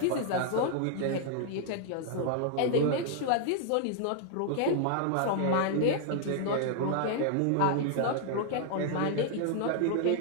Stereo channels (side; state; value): both; different; correlation -0.01